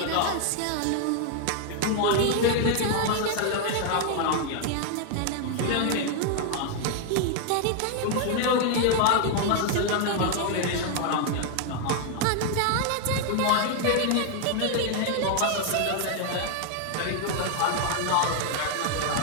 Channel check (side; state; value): both; different; correlation 0.00